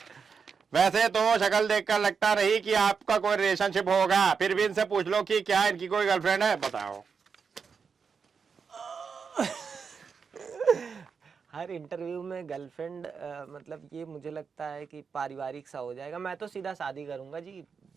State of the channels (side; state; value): left; quieter; 5.8 dB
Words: वैसे तो शक्ल देखकर लगता नहीं कि आपका कोई रिलेशनशिप होगा, फिर भी इनसे पूछ लो कि क्या इनकी कोई गर्लफ्रेंड है, बताओ। हर इंटरव्यू में गर्लफ्रेंड मतलब ये मुझे लगता है कि पारिवारिक सा हो जाएगा। मैं तो सीधा शादी करूंगा जी,